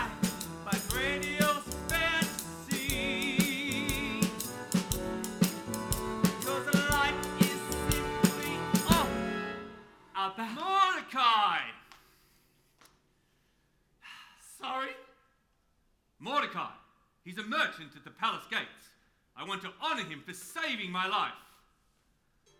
by grandiose fantasy, because the light is simply off about Mordecai. Sorry? Mordecai. He's a merchant at the palace gates. I want to honor him for saving my life.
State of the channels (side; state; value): both; identical; correlation 1.00